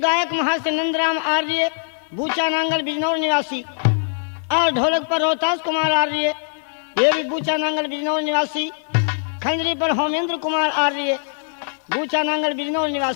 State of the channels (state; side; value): silent; right; digital silence